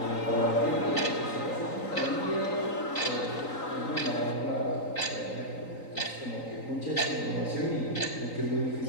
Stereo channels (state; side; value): late; right; 3.9 ms